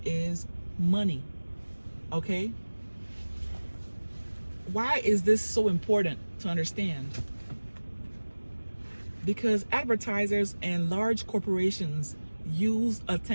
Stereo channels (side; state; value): both; inverted; correlation -1.00